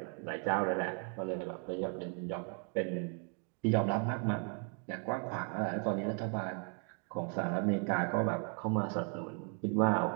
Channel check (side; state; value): left; quieter; 39.1 dB